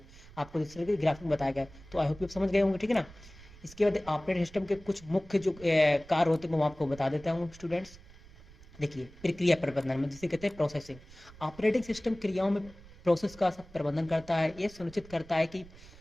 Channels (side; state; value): right; noise; rumble, 20 dB below the sound